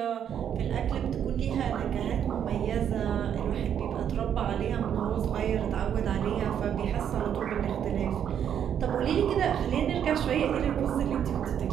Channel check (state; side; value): quieter; left; 9.0 dB